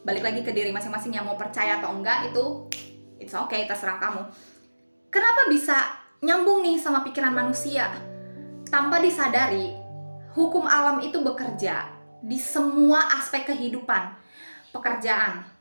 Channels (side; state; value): both; inverted; correlation -1.00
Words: balik lagi ke diri masing-masing yang mau percaya atau enggak, itu it's okay, terserah kamu. Kenapa bisa nyambung nih sama pikiran manusia? Tanpa disadari, hukum alam itu bekerja di semua aspek kehidupan. Pekerjaan,